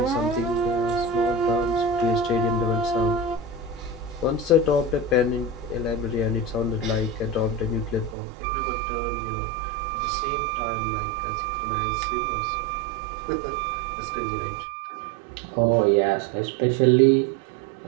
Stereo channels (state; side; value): drops out; left; at 8.2 s